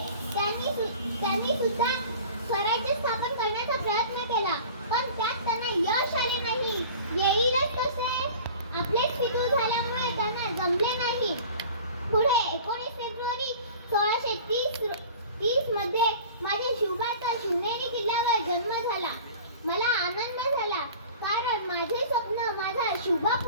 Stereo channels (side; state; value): both; inverted; correlation -0.42